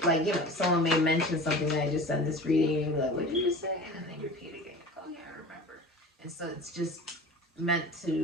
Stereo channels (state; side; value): normal; both; correlation 0.37